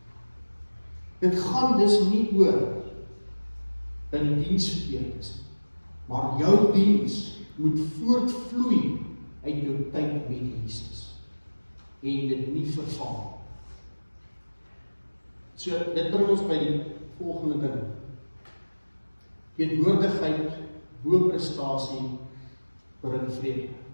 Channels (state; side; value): inverted; both; correlation -1.00